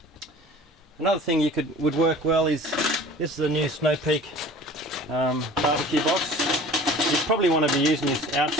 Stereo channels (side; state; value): both; normal; correlation 0.44